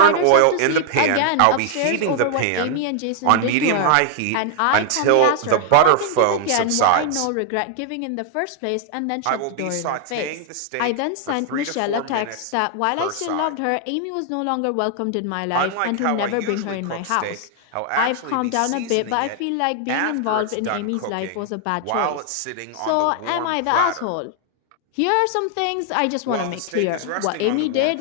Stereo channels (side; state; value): both; different; correlation 0.00